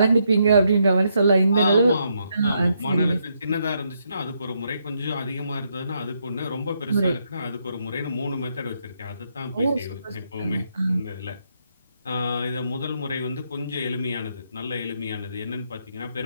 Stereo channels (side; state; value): both; inverted; correlation -0.77